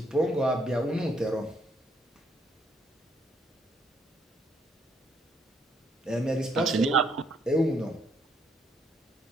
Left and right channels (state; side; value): normal; both; correlation 0.70